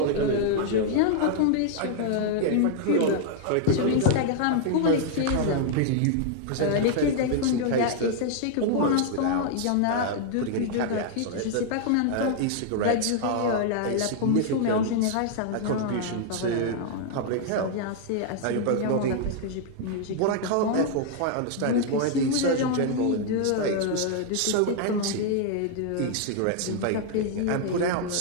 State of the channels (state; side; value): different; both; correlation 0.00